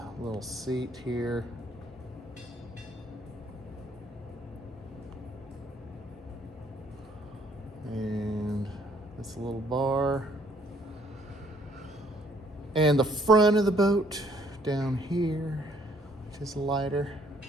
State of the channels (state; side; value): normal; both; correlation 0.64